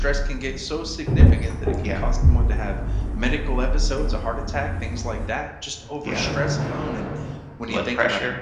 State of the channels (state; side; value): identical; both; correlation 1.00